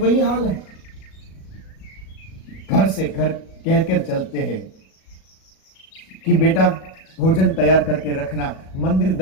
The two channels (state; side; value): late; right; 37 ms